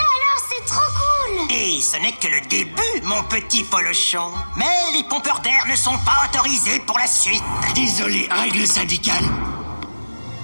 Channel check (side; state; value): both; inverted; correlation -1.00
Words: alors, c'est trop cool. Et ce n'est que le début, mon petit polochon. Mais les pompeurs d'air ne sont pas autorisés pour la suite. Désolé, règle syndicale.